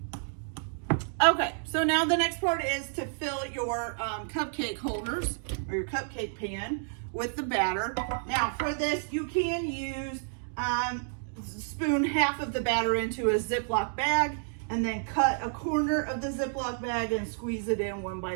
Okay, so now the next part is to fill your cupcake holders or your cupcake pan with the batter. Now for this, you can use, spoon half of the batter into a Ziploc bag and then cut a corner of the Ziploc bag and squeeze it in one by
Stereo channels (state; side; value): silent; left; digital silence